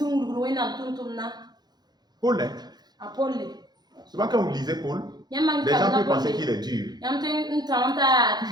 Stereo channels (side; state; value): left; late; 0.20 ms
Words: Paul, souvent quand vous lisez Paul, les gens peuvent penser qu'il est dur.